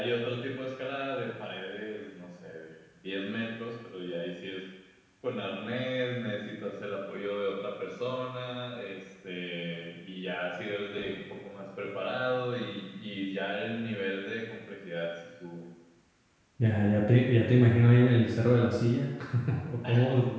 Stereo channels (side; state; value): both; identical; correlation 1.00